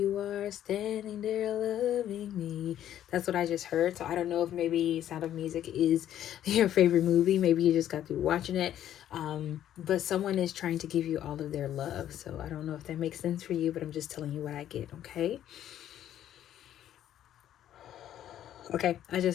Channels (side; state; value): right; quieter; 11.3 dB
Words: are standing there loving me. That's what I just heard. So I don't know if maybe Sound of Music is your favorite movie. Maybe you just got through watching it. But someone is trying to give you all of their love. So I don't know if that makes sense for you, but I'm just telling you what I get, okay? Okay, I